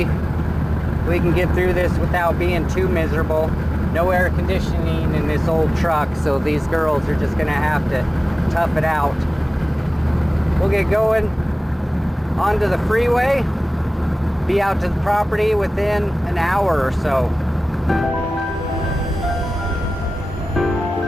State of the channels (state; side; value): normal; both; correlation 0.97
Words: we can get through this without being too miserable. No air conditioning in this old truck, so these girls are just gonna have to tough it out. We'll get going onto the freeway, be out to the property within an hour or so.